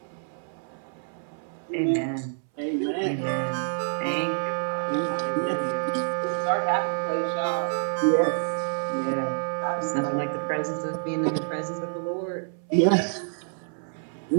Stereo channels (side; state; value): left; silent; 60 dB below the other